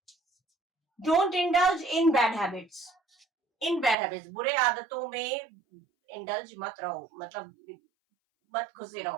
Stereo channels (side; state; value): left; drops out; at 4.0 s